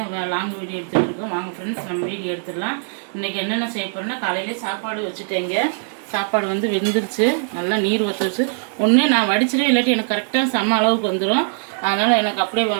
லாங் வீடியோ எடுத்துகிட்டு இருக்கோம். வாங்க ஃப்ரெண்ட்ஸ், நம்ம வீடியோ எடுத்துடலாம். இன்றைக்கி என்னென்ன செய்ய போகிறோன்னா, காலையிலே சாப்பாடு வச்சுட்டேங்க. சாப்பாடு வந்து வெந்துருச்சு, நல்லா நீர் வத்துருச்சு. ஒன்று நான் வடிச்சிடும், இல்லாட்டி எனக்கு கரெக்டாக செம்ம அளவுக்கு வந்துடும். அதனால் எனக்கு அப்படியே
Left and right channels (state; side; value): silent; left; digital silence